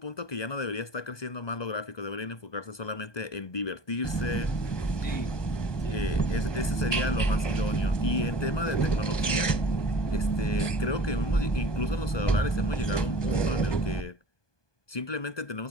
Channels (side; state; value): right; late; 1.2 ms